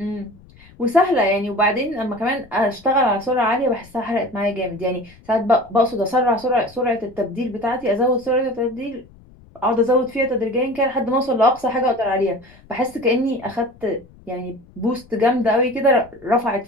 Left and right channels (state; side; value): noise; left; rumble, 25 dB below the sound